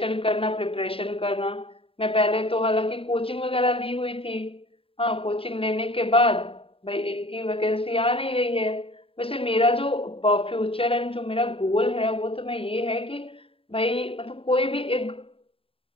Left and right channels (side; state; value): right; late; 0.27 ms